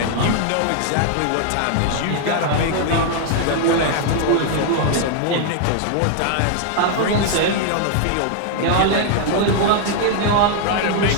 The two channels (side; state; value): both; different; correlation 0.00